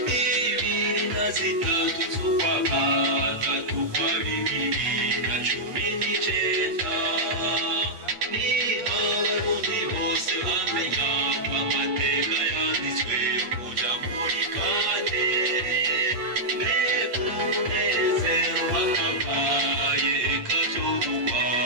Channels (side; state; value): left; late; 8.4 ms